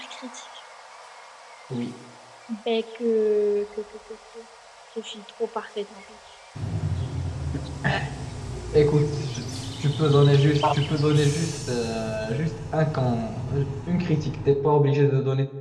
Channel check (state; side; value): identical; both; correlation 1.00